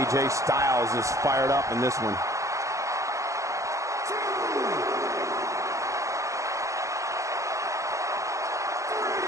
Styles is fired up in this one.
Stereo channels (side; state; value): left; late; 0.15 ms